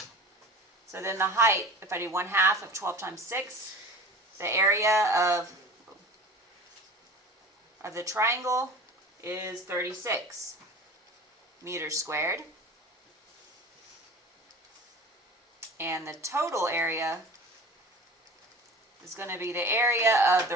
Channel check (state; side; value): normal; both; correlation 0.39